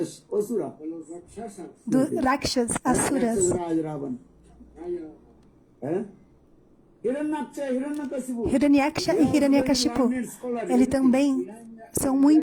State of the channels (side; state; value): both; identical; correlation 1.00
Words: Asura. De los rakshasas. do Rakshas, asuras. Raj Ravan. Hiranyaksha, Hiranyakashipu. Hiranyaksha e Hiranyakashipu, eles também são